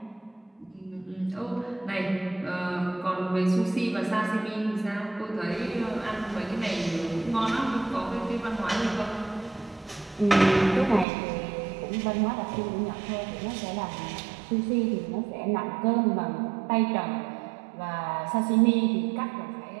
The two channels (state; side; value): drops out; left; at 11.1 s